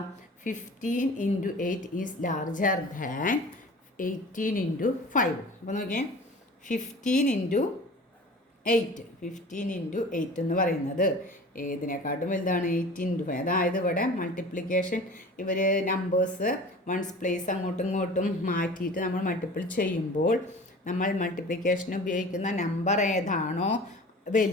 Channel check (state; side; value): normal; both; correlation 0.41